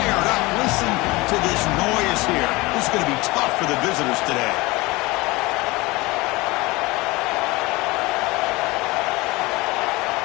up. Listen to this noise here. This is going to be tough for the visitors today.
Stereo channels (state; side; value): quieter; right; 22.4 dB